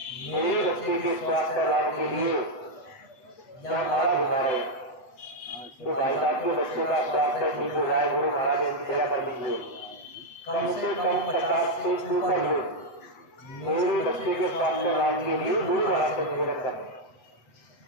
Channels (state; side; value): late; right; 8.1 ms